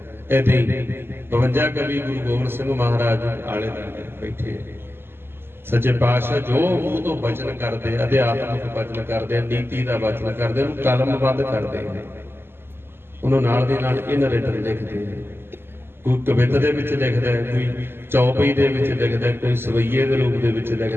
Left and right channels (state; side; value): late; left; 0.11 ms